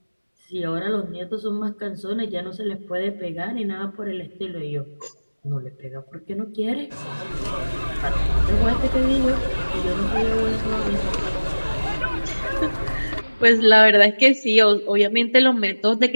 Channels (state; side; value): inverted; both; correlation -1.00